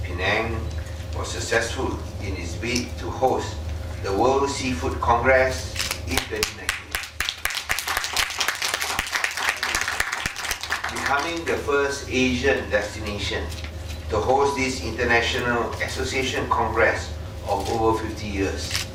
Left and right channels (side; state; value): both; identical; correlation 1.00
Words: Penang was successful in its bid to host the World Seafood Congress in 2019, becoming the first Asian destination to host this international association congress of over 50 years.